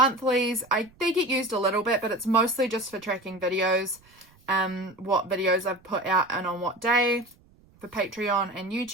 they get used a little bit, but it's mostly just for tracking videos, what videos I've put out and on what day for Patreon and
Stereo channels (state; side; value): noise; right; rumble, 29 dB below the sound